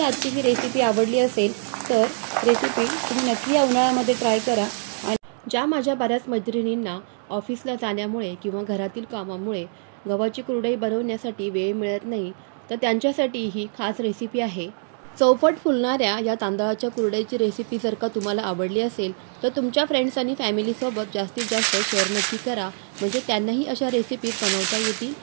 आजची ही रेसिपी आवडली असेल तर रेसिपी तुम्ही नक्की या उन्हाळ्यामध्ये ट्राय करा। आणि ज्या माझ्या बऱ्याच मैत्रिणींना ऑफिसला जाण्यामुळे किंवा घरातील कामामुळे गव्हाची कुरडई बनवण्यासाठी वेळ मिळत नाही, तर त्यांच्यासाठी ही खास रेसिपी आहे। चौपट फुलणाऱ्या या तांदळाच्या कुरडईची रेसिपी जर का तुम्हाला आवडली असेल तर तुमच्या फ्रेंड्स आणि फॅमिलीसोबत जास्तीत जास्त शेअर नक्की करा, म्हणजे त्यांनाही अशा रेसिपी बनवता येतील।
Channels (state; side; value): silent; left; digital silence